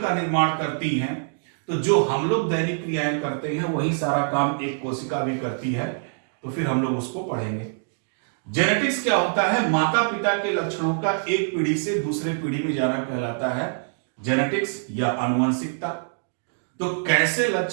का निर्माण करती हैं, तो जो हम लोग दैनिक क्रियाएं करते हैं वही सारा काम एक कोशिका भी करती है, तो फिर हम लोग उसको पढ़ेंगे। जेनेटिक्स क्या होता है? माता पिता के लक्षणों का एक पीढ़ी से दूसरे पीढ़ी में जाना कहलाता है जेनेटिक्स या आनुवंशिकता। तो कैसे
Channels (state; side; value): silent; left; digital silence